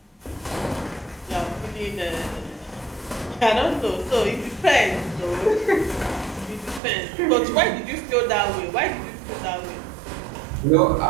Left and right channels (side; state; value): left; drops out; at 6.8 s